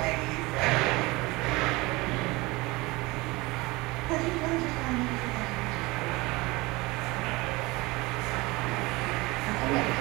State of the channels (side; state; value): left; quieter; 22.7 dB